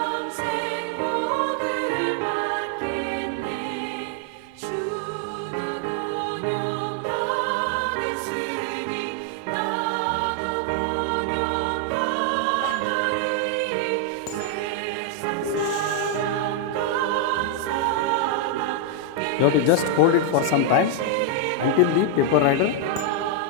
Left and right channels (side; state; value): both; different; correlation 0.00